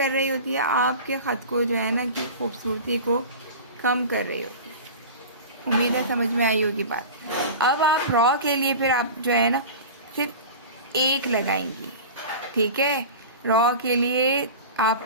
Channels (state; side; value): inverted; both; correlation -0.33